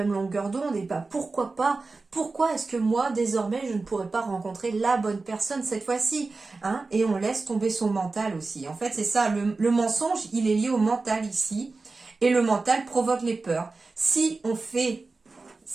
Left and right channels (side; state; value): left; quieter; 3.8 dB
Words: longueur d'onde, et pourquoi pas, pourquoi est-ce que moi, désormais, je ne pourrais pas rencontrer la bonne personne cette fois-ci, et on laisse tomber son mental aussi. En fait, c'est ça, le mensonge, il est lié au mental ici, et le mental provoque les peurs. Si on